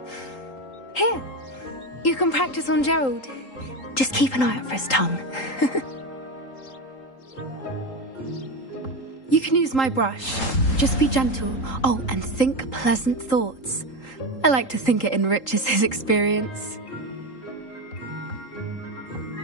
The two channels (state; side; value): late; right; 3.8 ms